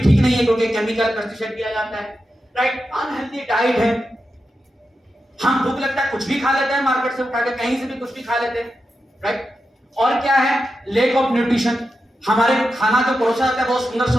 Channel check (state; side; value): normal; both; correlation 0.89